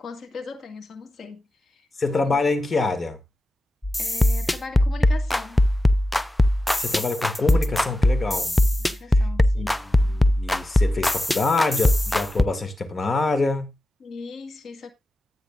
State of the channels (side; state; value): both; normal; correlation 0.92